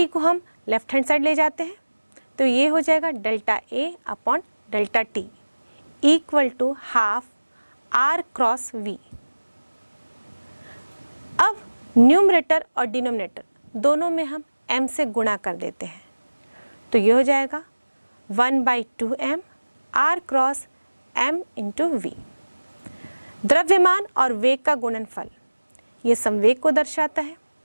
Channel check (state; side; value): inverted; both; correlation -1.00